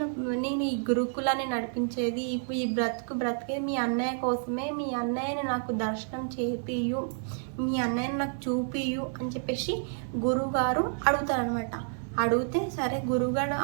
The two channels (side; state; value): left; silent; digital silence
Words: ఈ గురుకులాన్ని నడిపించేది, ఇప్పుడు ఈ బ్రతికేది మీ అన్నయ్య కోసమే, మీ అన్నయ్యని నాకు దర్శనం చేపియు, మీ అన్నయ్యని నాకు చూపియు అని చెప్పేసి గురువుగారు అడుగుతారనమాట. అడిగితే సరే గురువుగారు